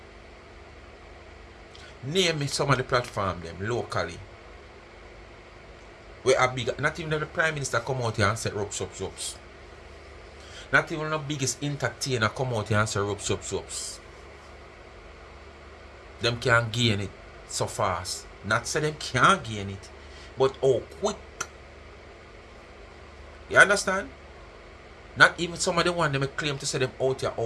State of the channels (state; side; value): identical; both; correlation 1.00